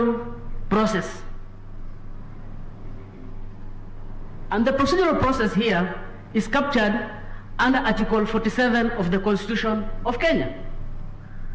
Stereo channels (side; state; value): both; identical; correlation 1.00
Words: process. And the procedural process here is captured under Article 47 of the Constitution of Kenya.